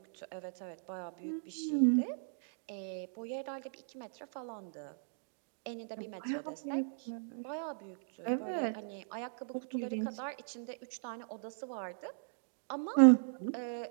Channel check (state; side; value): silent; left; digital silence